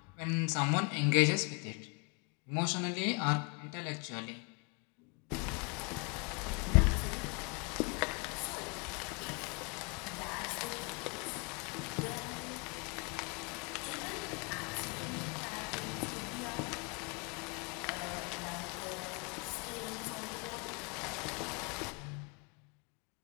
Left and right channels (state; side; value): quieter; right; 32.3 dB